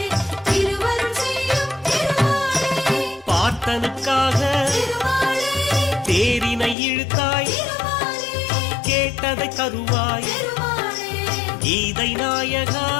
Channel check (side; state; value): right; drops out; at 6.8 s